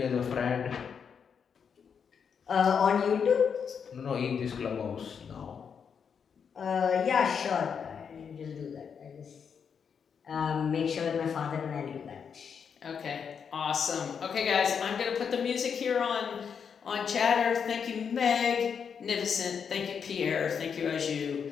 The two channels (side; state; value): right; quieter; 6.8 dB